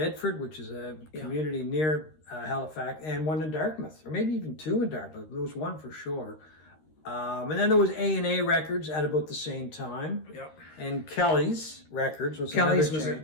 which is a community near Halifax, and one in Dartmouth, or maybe even 2 in Dartmouth. There was one for sure. And then there was A&A Records at about the same time. Yep. And Kelly's Records was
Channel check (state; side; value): late; right; 13 ms